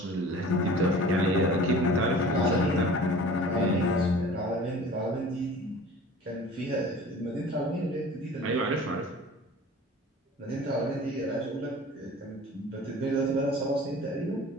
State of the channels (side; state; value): both; normal; correlation 0.44